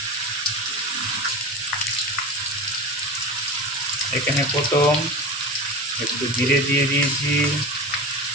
প্রথম একটু জিরে দিয়ে দিয়েছি,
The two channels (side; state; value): both; normal; correlation 0.28